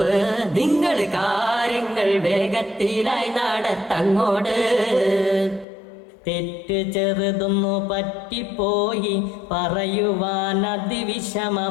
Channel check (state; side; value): drops out; right; at 5.7 s